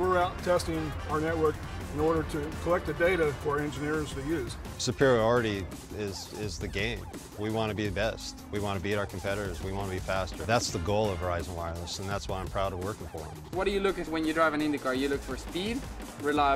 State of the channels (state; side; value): identical; both; correlation 1.00